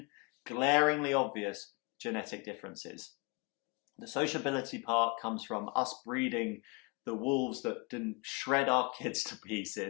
glaringly obvious genetic differences. The sociability part comes from us breeding the wolves that didn't shred our kids to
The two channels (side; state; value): right; quieter; 30.9 dB